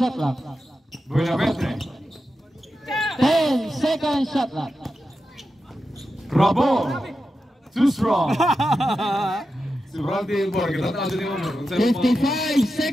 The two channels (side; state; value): both; normal; correlation 0.90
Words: clock. Buenamente. 10 second shot clock. Rabor. Too strong. Si Randy Elbor, kita tayo din yung 55